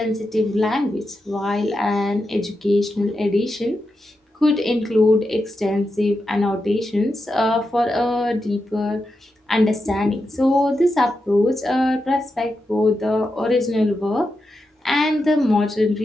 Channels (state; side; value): normal; both; correlation 0.88